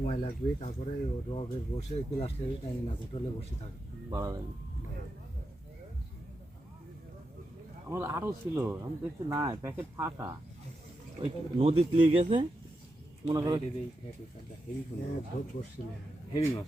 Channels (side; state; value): both; normal; correlation 0.87